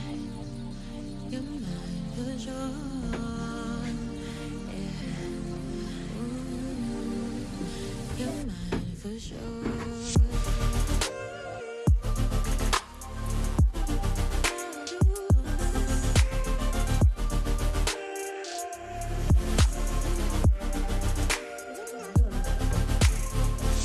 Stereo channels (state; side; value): identical; both; correlation 1.00